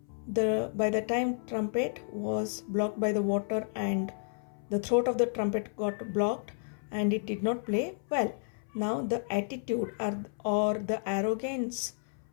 by the time trumpet was blocked by the water and the throat of the trumpet got blocked and it did not play well. Now the attitude or the arrogance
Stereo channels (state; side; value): silent; right; 57 dB below the other